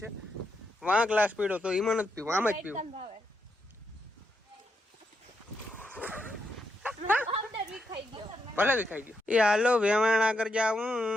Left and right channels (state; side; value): normal; both; correlation 0.81